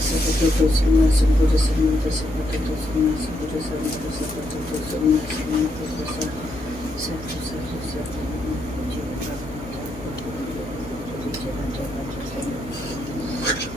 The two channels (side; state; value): left; noise; hum, 14 dB below the sound